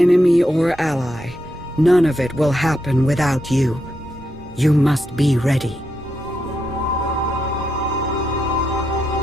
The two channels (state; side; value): normal; both; correlation 0.83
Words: or ally, none of it will happen without you. You must be ready.